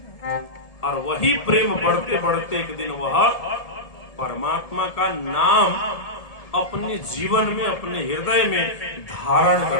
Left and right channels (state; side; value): late; right; 1.7 ms